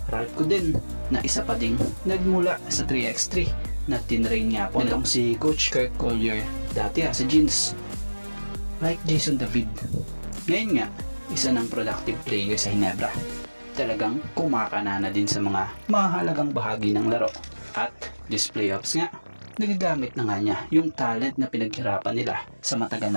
Radko din, na isa pa ding nagmula sa 3x3 na tinrain nga po nitong si Coach Kirk Collier dati sa Gins. Like Jason David, ngayon nga isa ng productive player sa Ginebra. Talagang kumakanana din sa mga mahalagang bahagi ng laro. At this playoffs nga, nagagamit na nga niya yung talent na pinaghirapan nila sa matagal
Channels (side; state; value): both; inverted; correlation -1.00